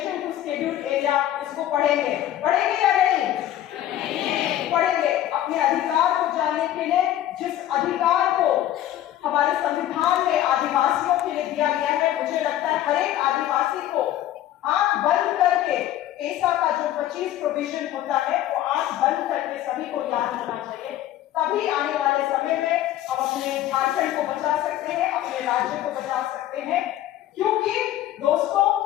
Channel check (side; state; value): right; quieter; 12.9 dB